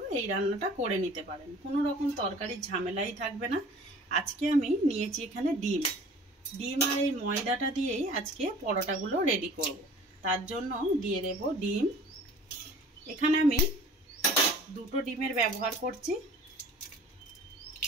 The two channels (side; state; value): both; normal; correlation 0.46